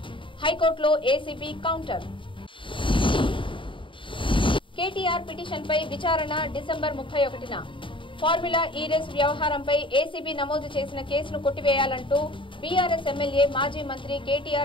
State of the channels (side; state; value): right; late; 0.25 ms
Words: హైకోర్టులో ఏసీబీ కౌంటర్. కేటీఆర్ పిటిషన్పై విచారణ డిసెంబర్ 31న. ఫార్ములా ఈ రేసు వ్యవహారంపై ఏసీబీ నమోదు చేసిన కేసును కొట్టివేయాలంటూ బీఆర్ఎస్ ఎమ్మెల్యే మాజీ మంత్రి